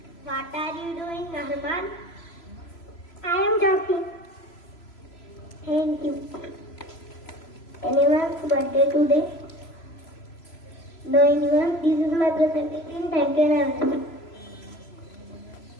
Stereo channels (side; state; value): right; late; 3.0 ms